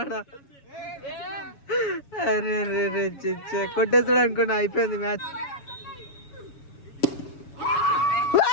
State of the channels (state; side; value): late; right; 7.1 ms